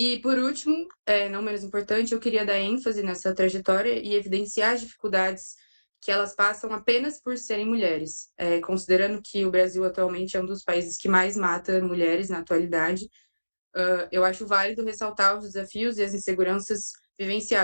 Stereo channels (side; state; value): both; inverted; correlation -1.00